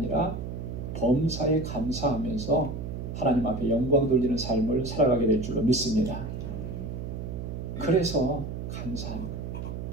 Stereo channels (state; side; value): noise; right; hum, 6 dB below the sound